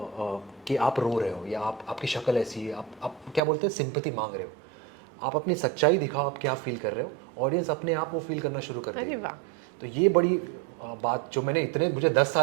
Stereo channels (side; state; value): left; drops out; at 3.4 s